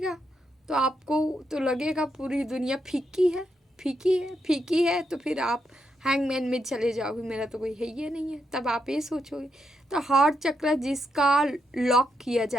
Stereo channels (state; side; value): normal; both; correlation 0.81